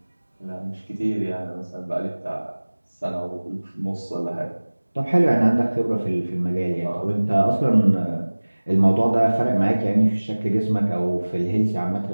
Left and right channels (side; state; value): both; inverted; correlation -1.00